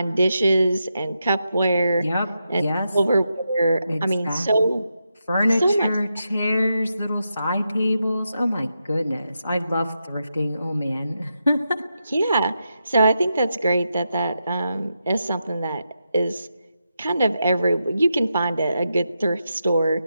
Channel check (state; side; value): inverted; both; correlation -0.86